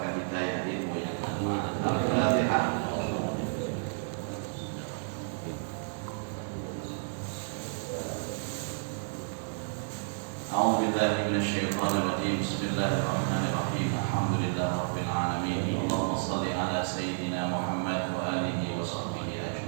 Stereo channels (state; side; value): silent; left; digital silence